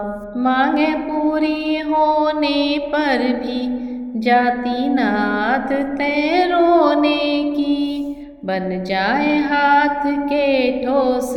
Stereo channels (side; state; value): both; identical; correlation 1.00